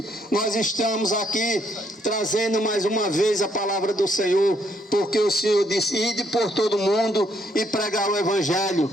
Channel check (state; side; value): normal; both; correlation 0.71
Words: nós estamos aqui trazendo mais uma vez a palavra do Senhor, porque o Senhor disse: ide por todo mundo e pregar o Evangelho.